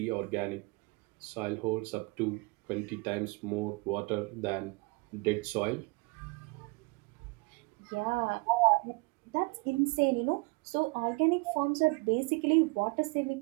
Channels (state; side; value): quieter; left; 28.2 dB